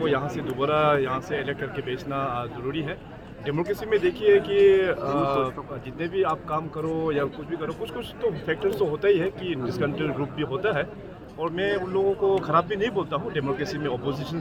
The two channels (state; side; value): identical; both; correlation 1.00